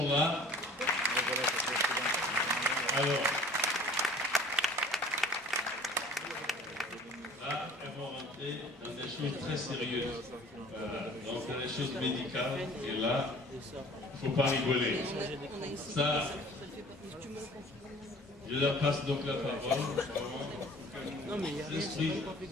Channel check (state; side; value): normal; both; correlation 0.48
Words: là. Alors, là, elles vont rentrer dans des choses très sérieuses, donc dans les choses médicales, et là, il ne faut pas rigoler. Ça, je leur passe donc la parole. Non, mais il n'y a rien de